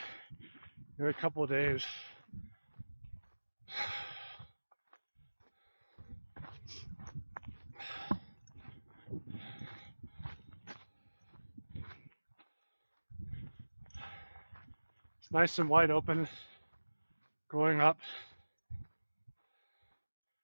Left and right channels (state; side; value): inverted; both; correlation -1.00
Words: in a couple of days. It's nice and wide open going up.